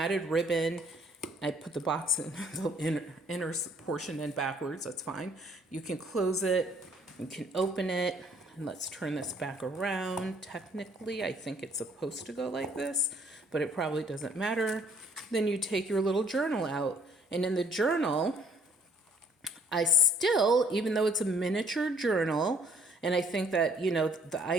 ribbon. I put the box in the inner portion in backwards. That's fine. You can close it. You can open it. And let's turn this back around. Technically, I think it's supposed to go like this, but it probably doesn't matter. Then you take your little journal out. And in the journal, I still, even though it's a miniature journal, and I think that, you know, the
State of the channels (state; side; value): normal; both; correlation 0.61